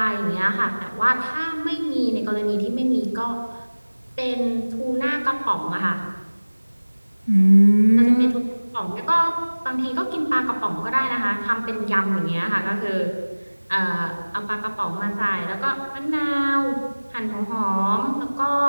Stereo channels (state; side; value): inverted; both; correlation -1.00